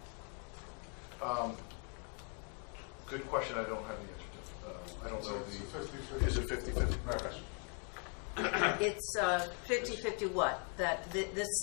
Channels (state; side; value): quieter; right; 37.7 dB